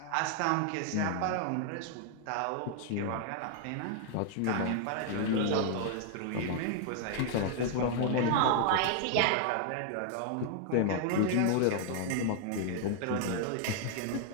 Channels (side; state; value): both; different; correlation 0.00